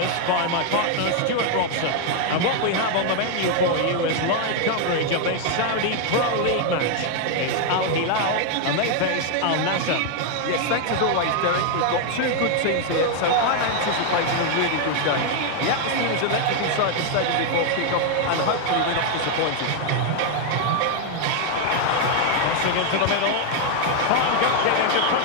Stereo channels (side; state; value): both; different; correlation 0.00